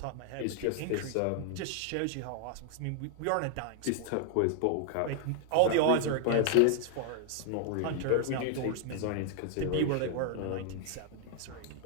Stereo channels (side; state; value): both; different; correlation 0.00